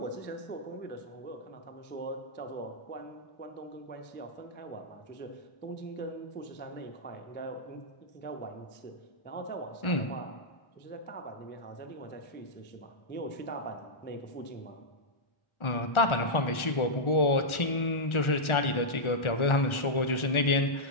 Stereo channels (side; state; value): right; late; 1.4 ms